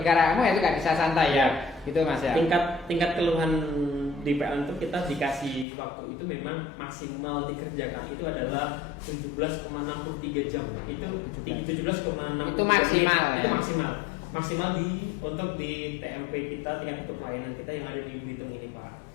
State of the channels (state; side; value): drops out; right; at 5.7 s